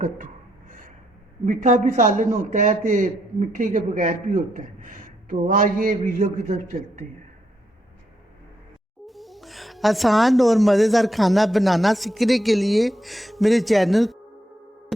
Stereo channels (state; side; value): normal; both; correlation 0.77